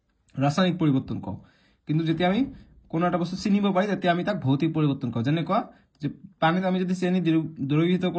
ৰাসায়নিক পৰিৱৰ্তন কওঁ কিন্তু যেতিয়া আমি কোনো এটা বস্তু চিনিব পাৰি তেতিয়া আমি তাক ভৌতিক পৰিৱৰ্তন কওঁ যেনেকুৱা যে পানীত আমি যদি চেনি দ্ৰৱীভূত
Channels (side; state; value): both; identical; correlation 1.00